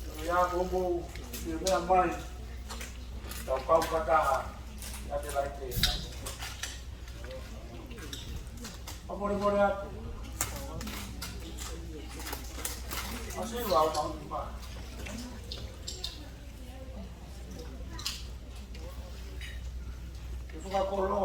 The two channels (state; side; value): identical; both; correlation 1.00